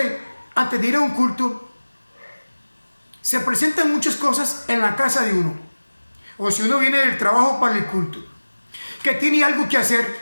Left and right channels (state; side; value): inverted; both; correlation -1.00